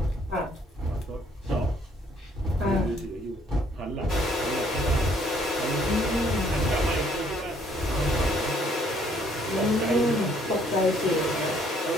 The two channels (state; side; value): normal; both; correlation 0.64